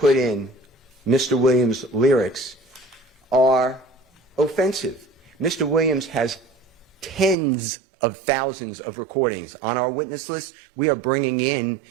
in Mr. Williams' lyrics are offensive. Mr. Williams has tens of thousands of recordings. On our witness list, we are bringing in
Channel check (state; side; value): drops out; left; at 7.4 s